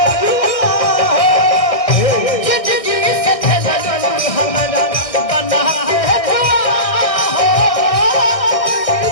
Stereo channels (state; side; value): late; right; 1.6 ms